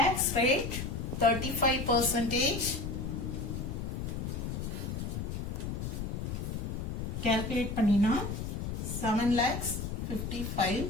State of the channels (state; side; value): noise; left; rumble, 4 dB below the sound